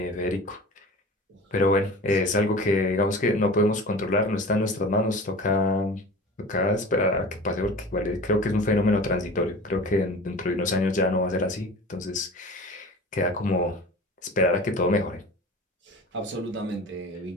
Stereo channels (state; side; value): normal; both; correlation 0.38